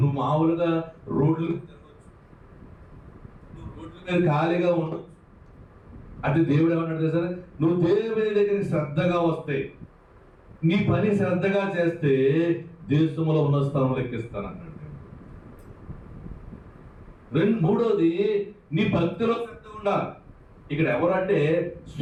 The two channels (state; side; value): identical; both; correlation 1.00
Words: నువ్వు మామూలుగా రోడ్లు తిరగచ్చు, నువ్వు రోడ్ల మీద ఖాళీగా ఉండొచ్చు. అది దేవుడు ఏమన్నాడు తెలుసా? నువ్వు దేవుని దగ్గరికి శ్రద్ధగా వస్తే, నీ పని శ్రద్ధగా చేస్తే దేశంలో ఉన్న స్థలంలో ఎక్కిస్తానన్నాడు. మూడోది నీ భక్తిలో శ్రద్ధ ఉండాలి. ఇక్కడ ఎవరంటే